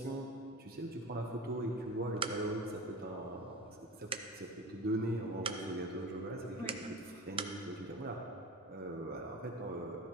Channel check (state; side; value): normal; both; correlation 0.31